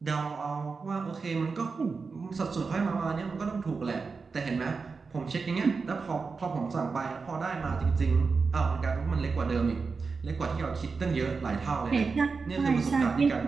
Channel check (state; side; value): quieter; left; 4.7 dB